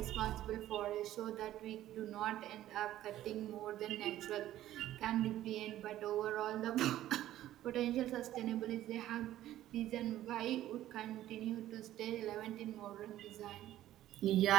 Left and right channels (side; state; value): left; quieter; 13.5 dB